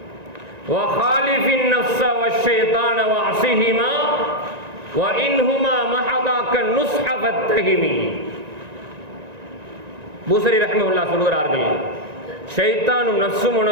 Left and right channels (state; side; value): late; left; 1.9 ms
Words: வஹாலிஃபின் நஃப்ஸ வஷ்ஷைத்தான வஅஸிஹிமா வஇன்ஹுமா மஹதாக்க நுஸ்ஹ ஃபத்தஹிமி. பூசரி ரஹிமஹுல்லா சொல்கிறார்கள், ஷைத்தானும் நஃப்ஸும்